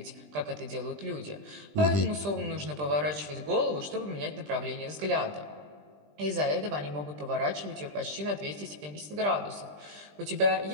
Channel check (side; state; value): left; late; 20 ms